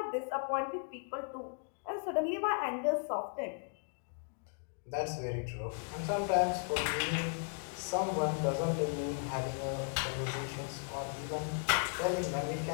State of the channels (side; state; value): right; silent; 54 dB below the other